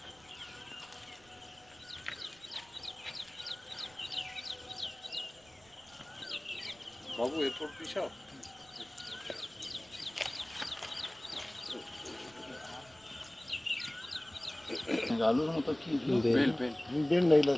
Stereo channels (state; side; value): noise; right; rumble, 27 dB below the sound